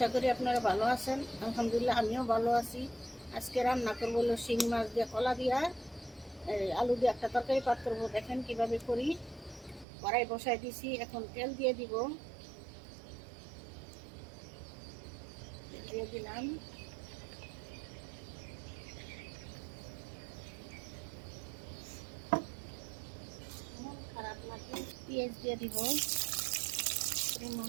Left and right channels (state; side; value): drops out; left; at 9.9 s